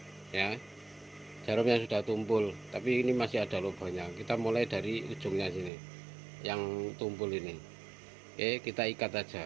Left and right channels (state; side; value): drops out; left; at 5.7 s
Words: ya, jarum yang sudah tumpul, tapi ini masih ada lubangnya. Kita mulai dari ujungnya sini yang tumpul ini. Oke, kita ikat aja.